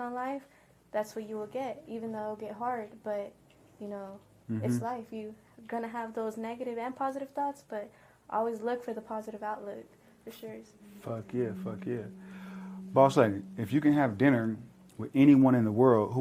life, that's what you will get, even though it'll get hard, but it's life. You're gonna have those negative and positive thoughts, but always look for the positive outlook, for sure. Fuck yeah. Boss lady, if you can have dinner with anyone in the world, who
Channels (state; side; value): identical; both; correlation 1.00